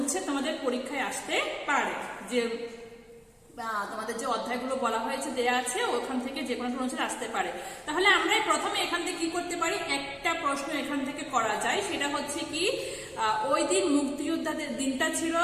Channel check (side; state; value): both; identical; correlation 1.00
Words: তোমাদের পরীক্ষায় আসতে পারে। যে তোমাদের যে অধ্যায়গুলো বলা হয়েছে দেয়া আছে ওখান থেকে যে কোনো অনুচ্ছেদ আসতে পারে। তাহলে আমরা প্রথমে এখান থেকে কি করতে পারি, একটা প্রশ্ন এখান থেকে করা যায়, সেটা হচ্ছে কি ওই দিন মুক্তিযোদ্ধাদের দিনটা ছিল